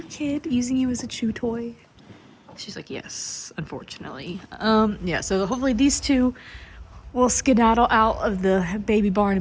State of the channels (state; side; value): identical; both; correlation 1.00